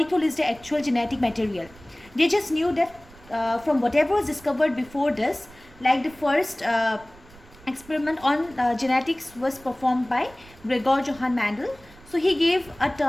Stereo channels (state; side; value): noise; right; rumble, 24 dB below the sound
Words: is the actual genetic material. They just knew that from whatever was discovered before this, like the first experiment on genetics was performed by Gregor Johann Mendel. So he gave a